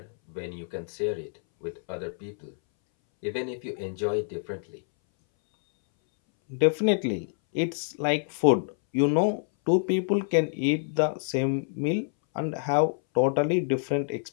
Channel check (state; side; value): silent; right; 60 dB below the other